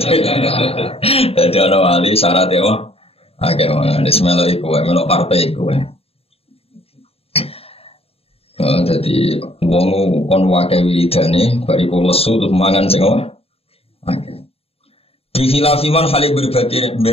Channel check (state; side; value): late; right; 0.28 ms